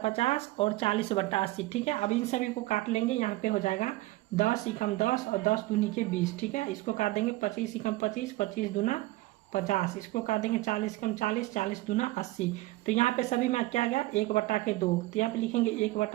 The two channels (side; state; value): left; quieter; 18.7 dB